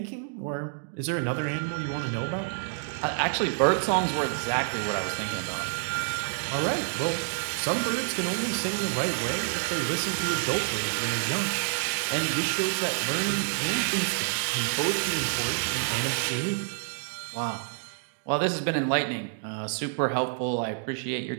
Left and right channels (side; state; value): left; silent; digital silence